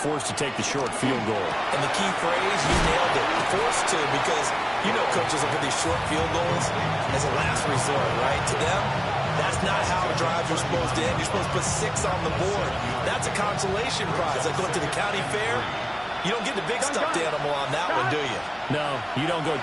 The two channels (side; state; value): both; identical; correlation 1.00